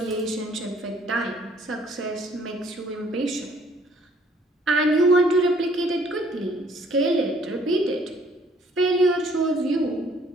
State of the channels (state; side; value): normal; both; correlation 0.60